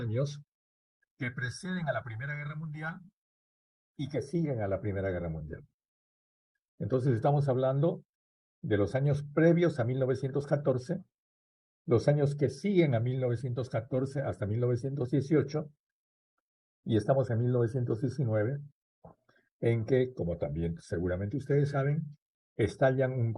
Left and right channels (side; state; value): both; identical; correlation 1.00